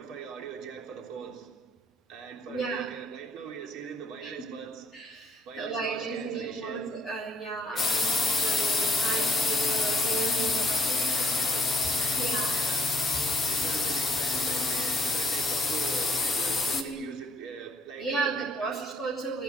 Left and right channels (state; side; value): normal; both; correlation 0.65